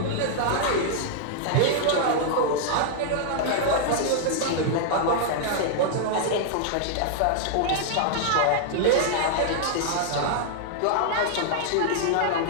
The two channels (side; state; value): both; different; correlation -0.01